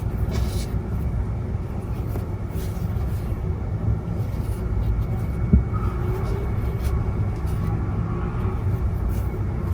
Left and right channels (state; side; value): identical; both; correlation 1.00